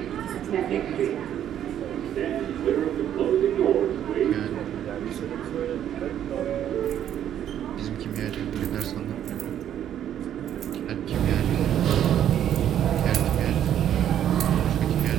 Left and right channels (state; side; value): quieter; left; 10.4 dB